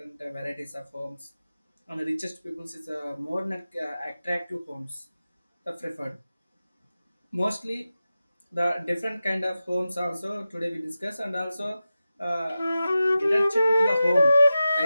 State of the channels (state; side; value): inverted; both; correlation -0.94